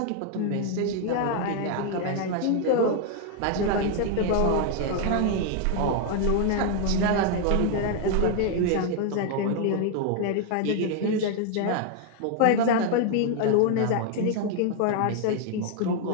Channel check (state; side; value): different; both; correlation 0.00